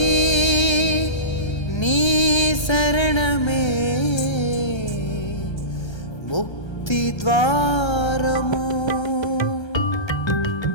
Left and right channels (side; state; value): right; late; 1.3 ms